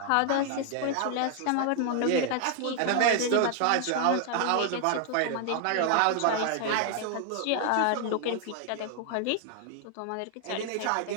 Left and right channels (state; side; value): different; both; correlation 0.00